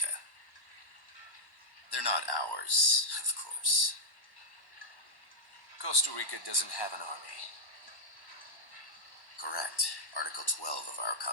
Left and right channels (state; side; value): late; right; 1.1 ms